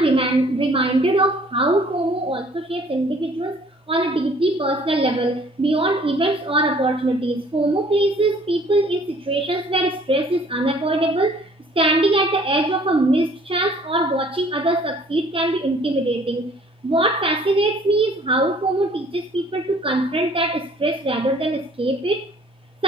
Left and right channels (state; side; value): normal; both; correlation 0.56